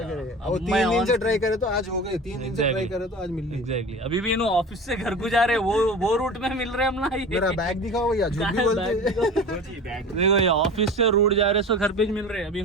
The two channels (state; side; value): normal; both; correlation 0.35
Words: सके। अब और 3 मैं दिन on से ट्राई करे तो आज हो गए, 3 दिन से ट्राई Exactly. करे तो आज मिल रही। एग्जैक्टली अभी भी इन्हों ऑफिस से घर को जा रहे, वो रूट में मिल रहे हम ना ये। मेरा बैग दिखाओ भैया, झूठ भी बोलते देखो ये ऑफिस से रूट जा रहे सो घर पे ही मिल रहे, अभी